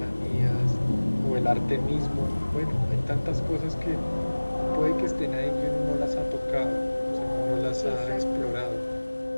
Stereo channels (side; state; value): both; inverted; correlation -1.00